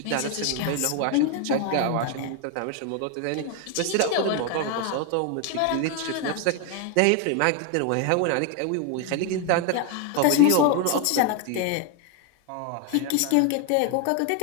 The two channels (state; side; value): different; both; correlation 0.01